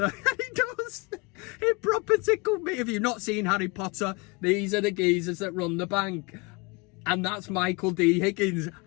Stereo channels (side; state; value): right; quieter; 27.7 dB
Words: He does. It proper tickled me. If you've not seen Harry Potter, these are the geezers that run the bank. And that's Michael D. Higgins.